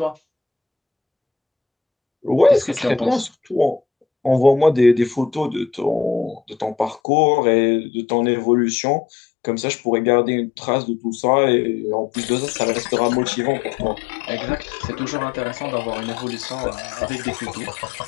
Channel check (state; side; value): drops out; right; at 7.0 s